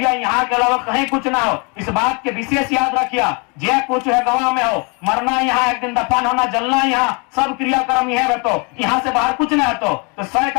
यहाँ के अलावा कहीं कुछ ना हो, इस बात के विशेष याद रखिया। जे कुछ है गवाह में हो, मरना यहाँ, एक दिन दफन होना, जलना यहाँ, सब क्रियाक्रम यह रहतो, यहाँ से बाहर कुछ नहीं हतो। तो सह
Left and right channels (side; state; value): right; quieter; 32.4 dB